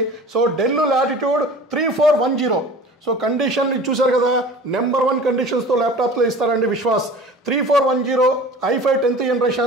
So Dell Latitude 3410. So condition చూసారు కదా, నెంబర్ 1 కండిషన్స్తో ల్యాప్టాప్లో ఇస్తారండి Vishwas. 3410 i5 10th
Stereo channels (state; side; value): normal; both; correlation 0.41